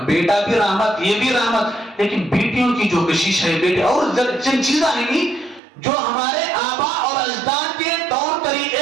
رحمت, یہ بھی رحمت, لیکن بیٹیوں کی جو کشش ہے بیٹے, اور چند چیزاں ہی نہیں جو ہمارے آبا اور اجداد کے طور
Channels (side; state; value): left; drops out; at 5.6 s